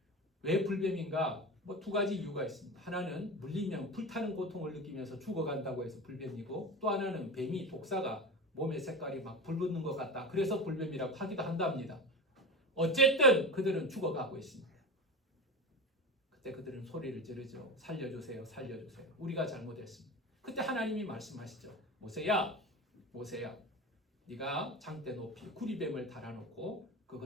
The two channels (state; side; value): normal; both; correlation 0.26